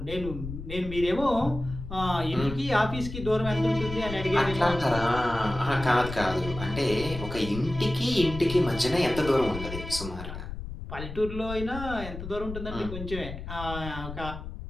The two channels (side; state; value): left; noise; rumble, 9 dB below the sound